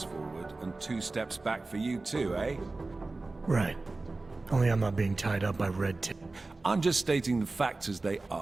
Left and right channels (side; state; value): left; quieter; 3.4 dB